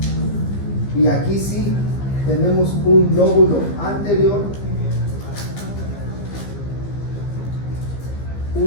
Y aquí sí tenemos un lóbulo anterior,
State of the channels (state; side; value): late; right; 15 ms